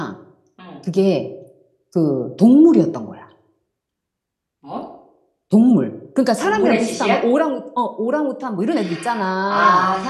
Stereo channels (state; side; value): identical; both; correlation 1.00